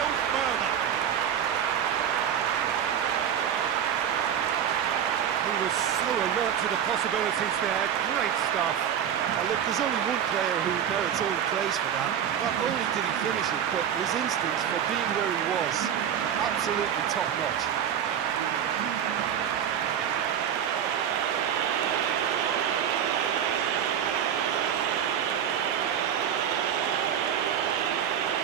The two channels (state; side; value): quieter; left; 9.0 dB